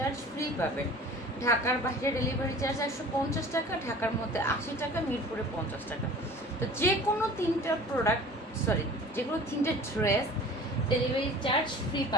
ফ্রি পাবেন। ঢাকার বাইরে ডেলিভারি চার্জ 150 টাকা, ঢাকার মধ্যে 80 টাকা, মিরপুরে 50 টাকা। তো যে কোনো তিনটা প্রোডাক্ট, যে কোনো তিনটে ড্রেস ডেলিভারি চার্জ ফ্রি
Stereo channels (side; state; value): both; normal; correlation 0.44